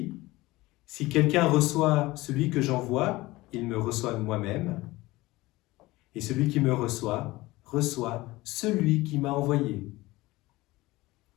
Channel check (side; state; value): right; quieter; 19.7 dB